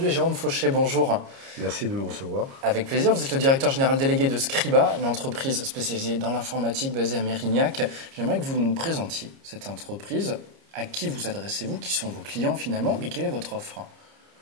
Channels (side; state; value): left; late; 30 ms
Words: est Jérôme Fauché, bonjour. Merci de me recevoir. Avec plaisir, vous êtes le directeur général délégué de Scriba, une entreprise spécialisée dans l'informatique basée à Mérignac. J'aimerais que vous nous présentiez cette entreprise. À qui vous adressez-vous? Qui sont vos clients finalement? Et quelle est votre offre?